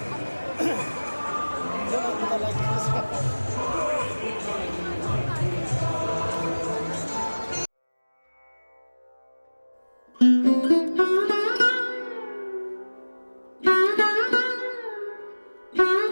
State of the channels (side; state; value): both; inverted; correlation -1.00